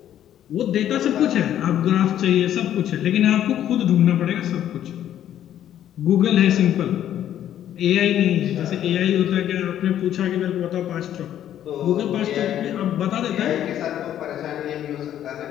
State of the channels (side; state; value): right; quieter; 11.1 dB